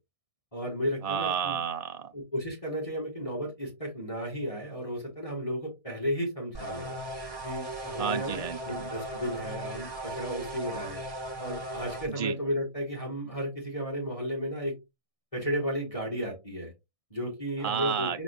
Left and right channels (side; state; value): right; late; 1.6 ms